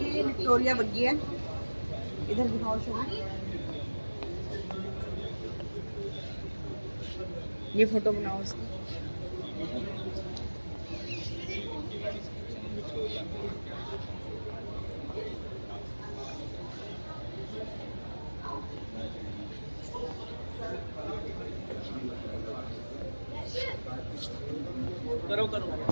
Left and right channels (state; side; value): inverted; both; correlation -1.00